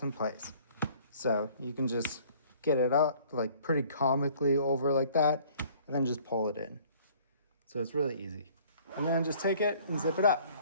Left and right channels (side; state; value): both; inverted; correlation -0.55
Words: in place. So you can just get it up like pretty comically over like that, and then just pull it in. So it's really easy. And then just take it and zip it up.